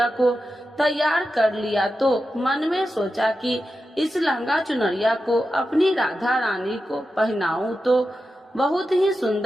को तैयार कर लिया तो मन में सोचा कि इस लहंगा चुनरिया को अपनी राधा रानी को पहनाऊं तो बहुत ही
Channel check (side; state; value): both; normal; correlation 0.91